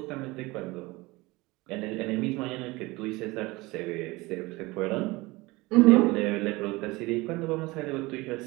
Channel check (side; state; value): left; quieter; 22.1 dB